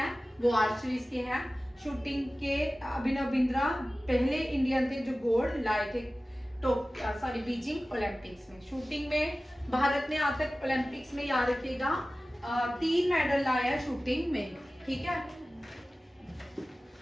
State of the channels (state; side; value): normal; both; correlation 0.97